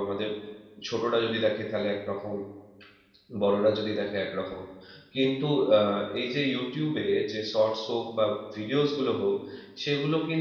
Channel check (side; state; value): both; identical; correlation 1.00